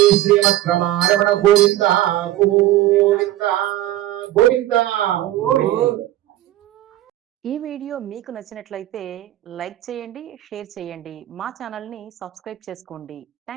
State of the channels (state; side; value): quieter; left; 14.3 dB